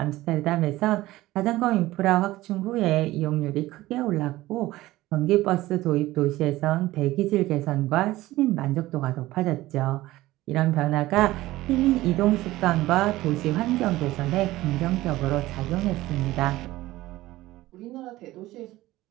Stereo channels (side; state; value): left; quieter; 17.2 dB